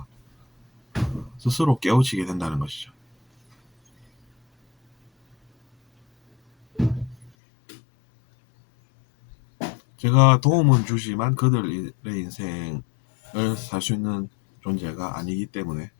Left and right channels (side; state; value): right; drops out; at 7.3 s